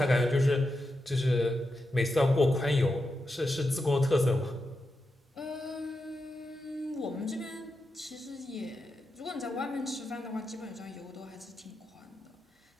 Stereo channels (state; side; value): normal; both; correlation 0.88